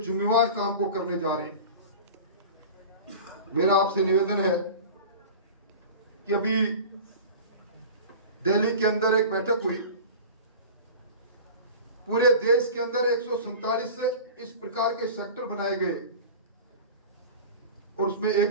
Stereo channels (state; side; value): inverted; both; correlation -0.36